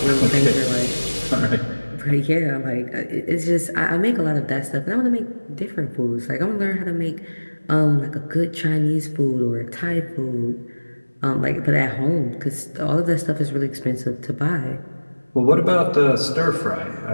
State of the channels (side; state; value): both; inverted; correlation -1.00